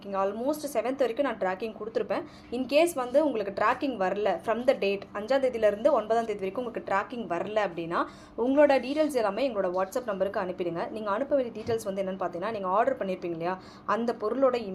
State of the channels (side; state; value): both; identical; correlation 1.00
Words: ஆல்மோஸ்ட் 7th வரைக்கும் நான் ட்ராக்கிங் கொடுத்துருப்பேன். இன்கேஸ் வந்து உங்களுக்கு ட்ராக்கிங் வரல ஃப்ரம் த டேட் 5ஆம் தேதியிலேருந்து 9ஆம் தேதி வரைக்கும் உங்களுக்கு ட்ராக்கிங் வரல அப்படின்னா உங்களோட டீட்டெயில்ஸ் எல்லாமே எங்களோட வாட்ஸ்அப் நம்பருக்கு அனுப்பிடுங்க. நீங்கள் அனுப்ப வேண்டிய டீட்டெயில்ஸ் வந்து என்னென்னு பார்த்தீங்கன்னா, நீங்கள் ஆர்டர் பண்ணியிருப்பீங்க இல்லையா, அந்த பொருளோட